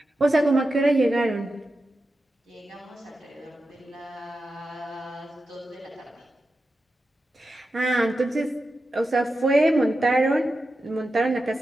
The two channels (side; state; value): both; normal; correlation 0.90